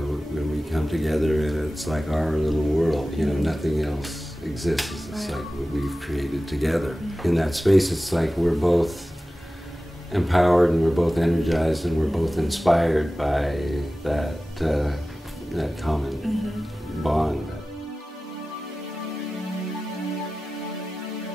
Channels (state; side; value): normal; both; correlation 0.96